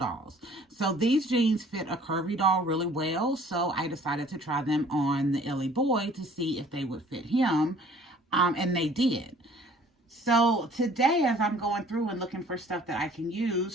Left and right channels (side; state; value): both; normal; correlation 0.54